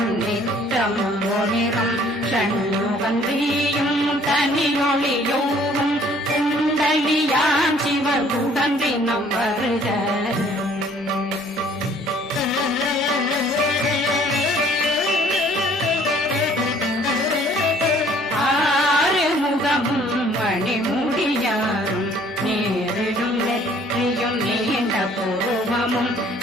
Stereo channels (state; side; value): normal; both; correlation 0.57